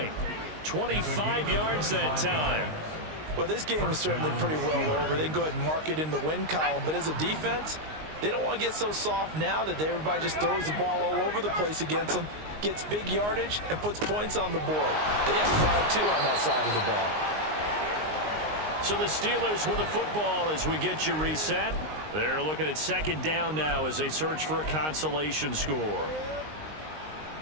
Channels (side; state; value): left; late; 19 ms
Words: 25 yards that time. Well, this game is certainly pretty well over. They can go ahead and mark it in the win column. But as a defense, they don't want to get so soft now that everybody just throws the ball all over the place against them, gets big yardage, and puts points on the board. They have pride, too, on that side of the ball. So the Steelers with the football as we get you reset. They're looking at second down now as they search for a consolation score.